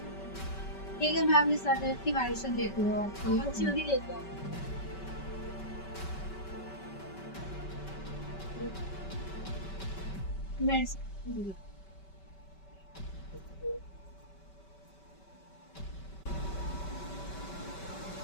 ठीक है, मैं अपने सर की मेडिसिन देती हूँ आपको। अच्छी होगी लेके आओ। मेडिसिन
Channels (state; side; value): late; right; 5.2 ms